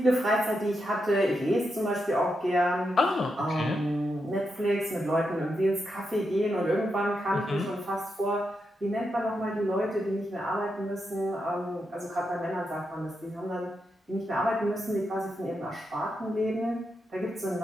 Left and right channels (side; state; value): both; normal; correlation 0.85